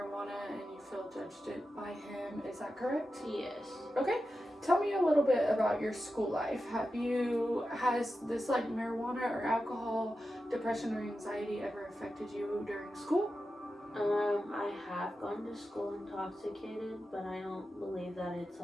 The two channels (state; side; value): normal; both; correlation 0.91